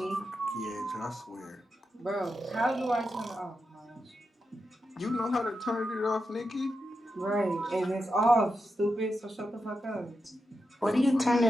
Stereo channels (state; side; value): normal; both; correlation 0.88